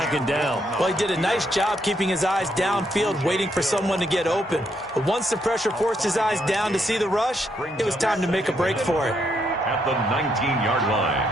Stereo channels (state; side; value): normal; both; correlation 0.75